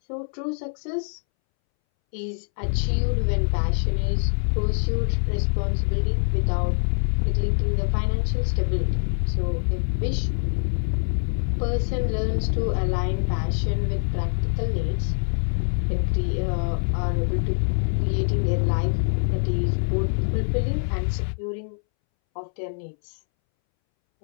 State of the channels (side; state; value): right; silent; 62 dB below the other